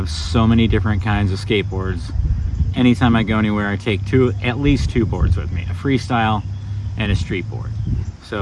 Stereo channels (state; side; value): identical; both; correlation 1.00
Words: so many different kinds of skateboards. Anytime I go anywhere, I take at least two boards with me, a freestyle and a street board.